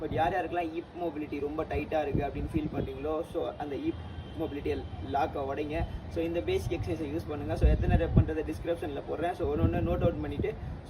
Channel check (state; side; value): identical; both; correlation 1.00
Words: யாருக்கெல்லாம் ஹிப் மொபிலிட்டி ரொம்ப டைட்டாக இருக்குது அப்படின்னு ஃபீல் பண்ணுறீங்களோ, ஸோ அந்த ஹிப் மொபிலிட்டியை லாக்கை உடைங்க. ஸோ இந்த பேசிக் எக்ஸசைஸை யூஸ் பண்ணுங்கள். ஸோ எத்தனை ரெப் பண்ணுறது டிஸ்கிரிப்ஷனில் போடுறேன். ஸோ ஒன்று நோட் அவுட் பண்ணிவிட்டு